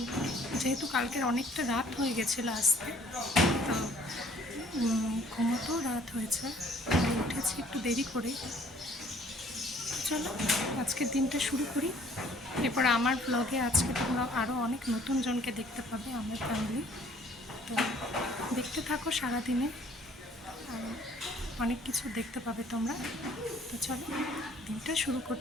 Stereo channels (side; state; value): both; normal; correlation 0.58